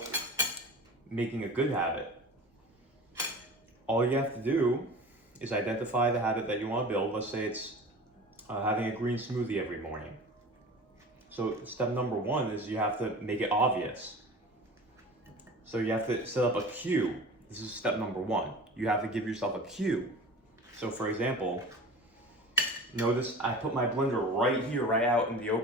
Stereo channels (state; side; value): normal; both; correlation 0.37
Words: making a good habit. All you have to do is identify the habit that you want to build. Let's say it's having a green smoothie every morning. So step number one is you have to make it obvious. So you have to set up a cue. This is step number one. You have to give yourself a cue. So for example, notice I put my blender right here, right out in the